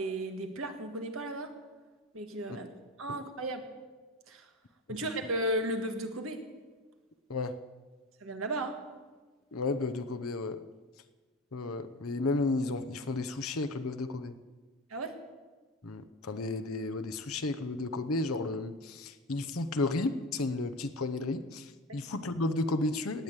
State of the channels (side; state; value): both; normal; correlation 0.30